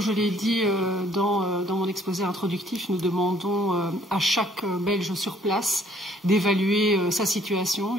je l'ai dit dans mon exposé introductif, nous demandons à chaque Belge sur place d'évaluer sa situation.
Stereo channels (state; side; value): normal; both; correlation 0.61